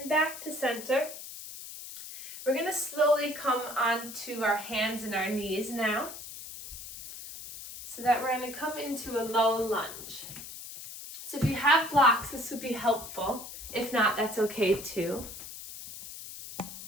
back to center. We're going to slowly come onto our hands and our knees now. So that we're going to come into a low lunge. So if you have blocks, this would be helpful. If not, that's okay too.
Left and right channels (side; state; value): left; noise; hiss, 11 dB below the sound